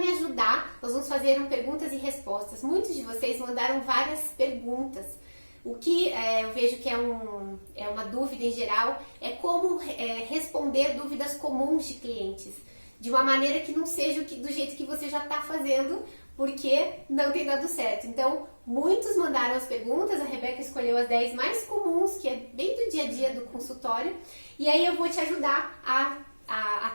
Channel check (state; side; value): inverted; both; correlation -1.00